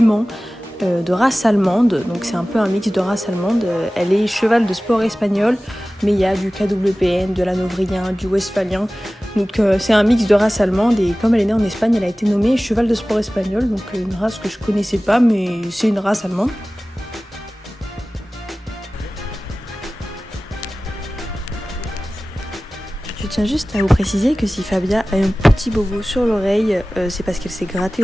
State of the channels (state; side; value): normal; both; correlation 0.97